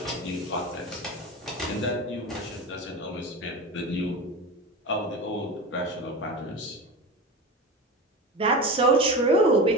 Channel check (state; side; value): normal; both; correlation 0.28